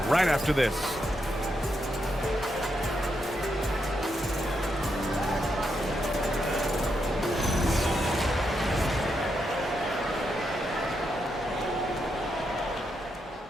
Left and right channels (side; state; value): both; normal; correlation 0.82